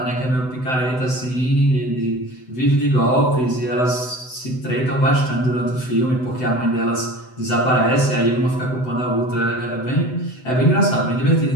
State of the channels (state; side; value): late; right; 7.9 ms